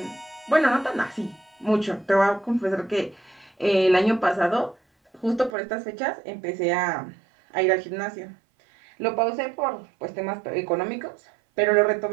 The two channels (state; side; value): drops out; left; at 5.5 s